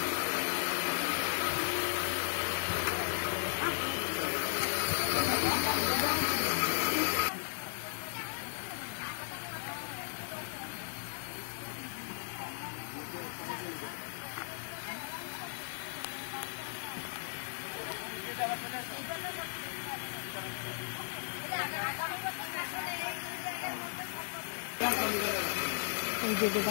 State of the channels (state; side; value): silent; right; digital silence